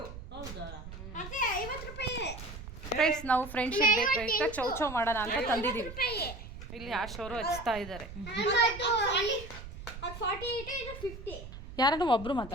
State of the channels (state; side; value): noise; right; rumble, 12 dB below the sound